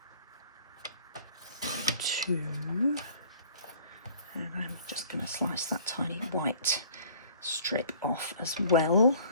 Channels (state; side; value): inverted; both; correlation -0.52